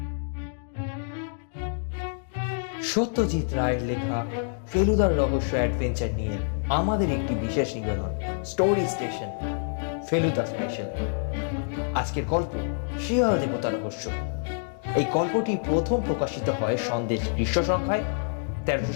সত্যজিৎ রায়ের লেখা ফেলুদার রহস্য অ্যাডভেঞ্চার নিয়ে আমাদের একটি বিশেষ নিবেদন, স্টোরি স্টেশন ফেলুদা স্পেশাল। আজকের গল্প শিয়াল দেবতা রহস্য। এই গল্পটি প্রথম প্রকাশিত হয় সন্দেশ গ্রীষ্ম সংখ্যায়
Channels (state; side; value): silent; right; digital silence